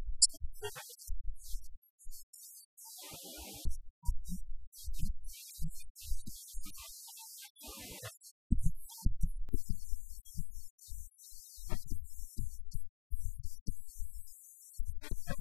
accounting, the detail emerges as the understudy of the city, and the suspicion arises that urbanism amounts to warfare conducted by other means. Footnote: this relates to Paul Virillo's minor school of thought on urban planning that understands the city as a result of war and its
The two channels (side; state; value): right; drops out; at 9.5 s